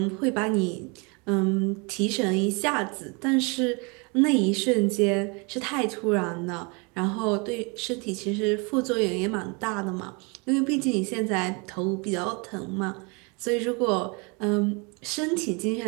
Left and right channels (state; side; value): quieter; left; 31.1 dB